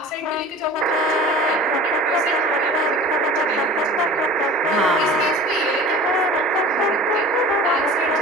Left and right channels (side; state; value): both; normal; correlation 0.40